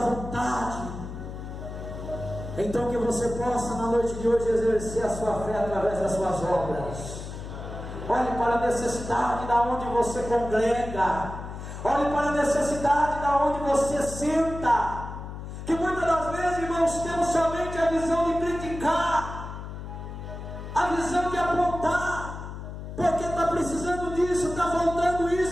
vontade. Então que você possa na noite de hoje exercer a sua fé através das suas obras. Olhe para a necessidade da onde você congrega. Olhe para a necessidade da onde você senta. Que muitas das vezes, irmãos, temos somente a visão de criticar, a visão de apontar, porque está precisando disso, está faltando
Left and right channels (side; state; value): left; noise; hum, 9 dB below the sound